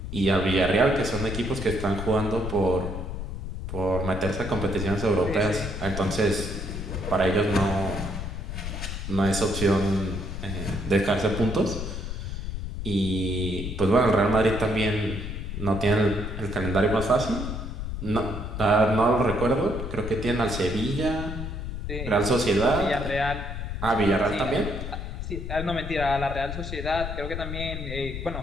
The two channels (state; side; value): noise; left; rumble, 6 dB below the sound